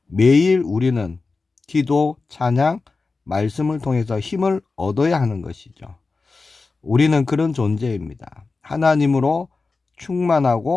매일 우리는 기도, 찬양, 말씀을 통해서 힘을 얻어야 하는 것이죠. 우리는 그런 존재입니다. 하나님으로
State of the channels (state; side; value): quieter; right; 4.0 dB